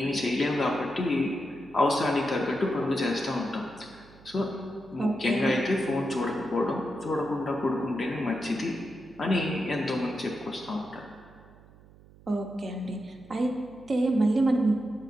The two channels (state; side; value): noise; right; hum, 24 dB below the sound